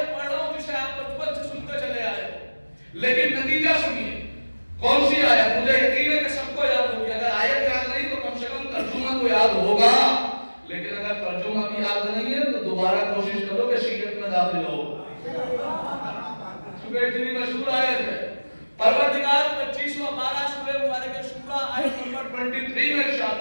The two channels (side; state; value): both; inverted; correlation -1.00